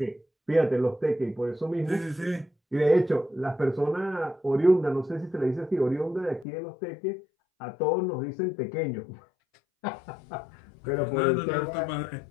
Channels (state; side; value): drops out; right; at 6.5 s